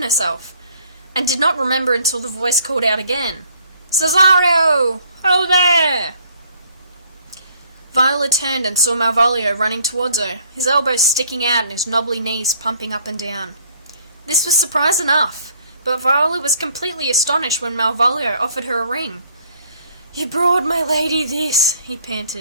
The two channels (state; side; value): inverted; both; correlation -0.61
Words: herself, and did not remember until the voice called out again, "Cesario! Hello there!" Viola turned and saw Malvolio running towards her, his elbows sticking out and his knobbly knees pumping up and down. This was surprise enough, but Viola was completely astonished when Malvolio offered her a ring. "You brought my lady this," he